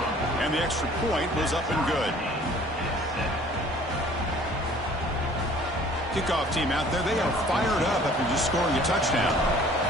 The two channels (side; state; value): both; normal; correlation 0.52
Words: And the extra point was up and good. Kickoff team out there, they are fired up after just scoring a touchdown.